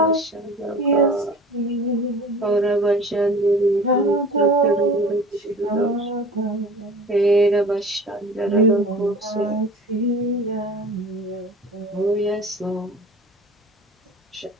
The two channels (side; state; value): both; normal; correlation 0.40